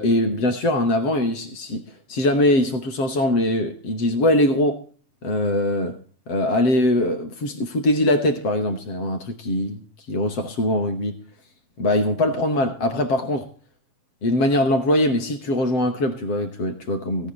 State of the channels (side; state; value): right; late; 7.9 ms